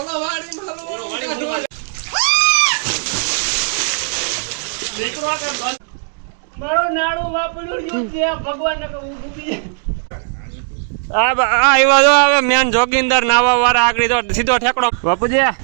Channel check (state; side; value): silent; left; digital silence